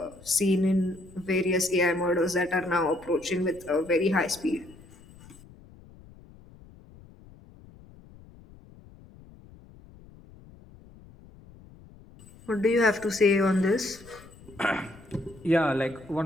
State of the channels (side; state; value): left; noise; rumble, 22 dB below the sound